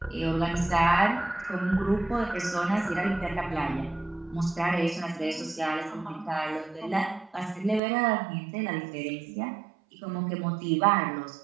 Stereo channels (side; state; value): left; drops out; at 7.8 s